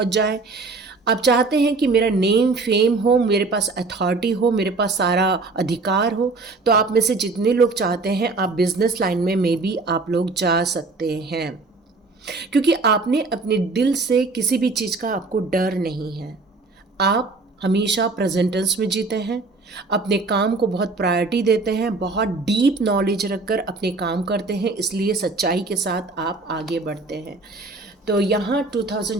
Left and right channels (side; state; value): left; quieter; 3.7 dB